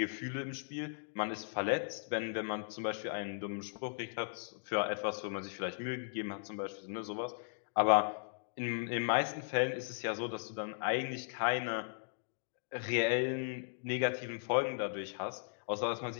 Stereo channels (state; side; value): silent; right; digital silence